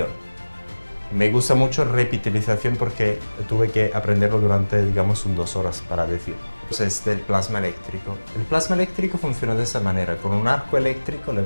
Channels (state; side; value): inverted; both; correlation -1.00